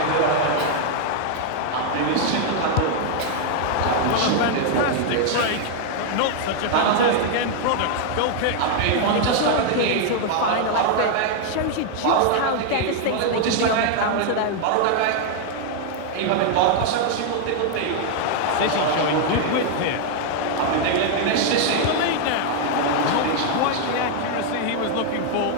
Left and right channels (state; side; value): different; both; correlation 0.00